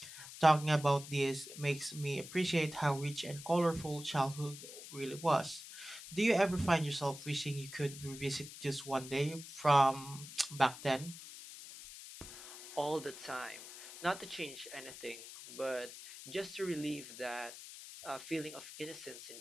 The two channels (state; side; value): noise; left; hiss, 13 dB below the sound